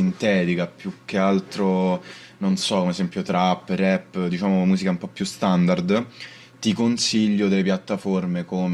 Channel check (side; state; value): both; identical; correlation 1.00